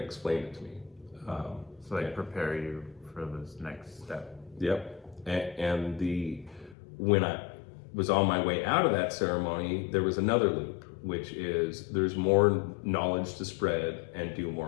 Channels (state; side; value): drops out; right; at 6.8 s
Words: it to me. So prepare you for this next step. Yep. And when I was on my way out of that ceremony, there was another loop, which is there's more knowledge to spread and do